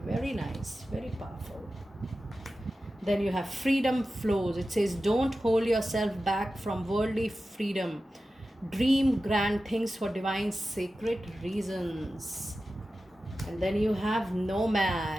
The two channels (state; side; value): normal; both; correlation 0.94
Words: Very nice, very powerful. Then you have freedom flows. It says don't hold yourself back from worldly freedom. Dream grand things for divine sacred reasons. And then you have